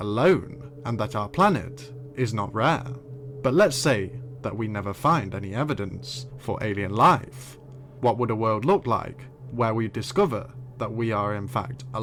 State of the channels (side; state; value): both; identical; correlation 1.00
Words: and that our planet is not rare. But let's say that we never find any evidence for alien life. What would a world look like where we discover that we are in fact